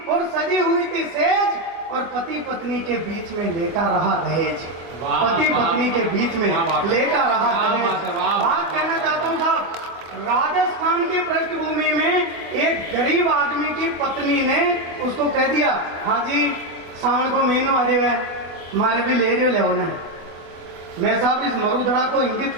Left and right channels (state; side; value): late; left; 24 ms